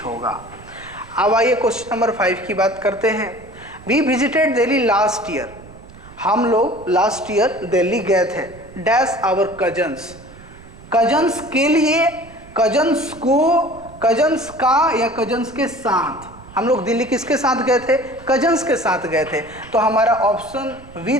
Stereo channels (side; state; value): right; noise; rumble, 20 dB below the sound